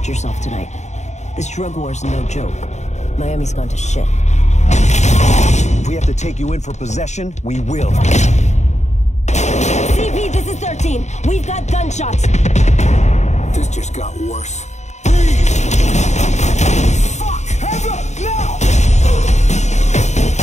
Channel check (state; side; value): late; right; 0.33 ms